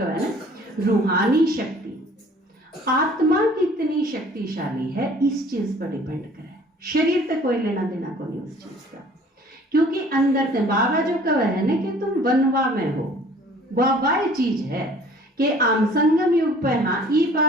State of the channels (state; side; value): normal; both; correlation 0.52